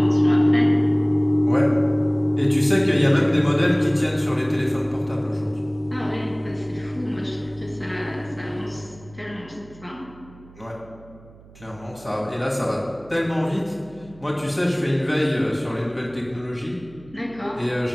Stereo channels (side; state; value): right; noise; hum, 23 dB below the sound